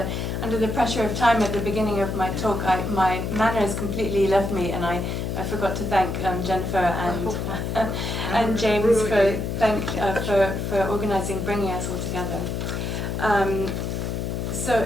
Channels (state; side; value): noise; left; hum, 2 dB below the sound